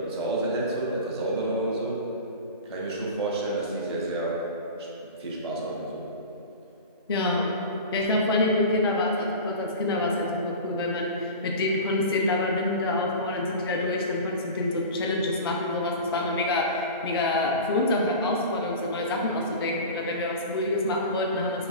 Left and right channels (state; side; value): inverted; both; correlation -0.32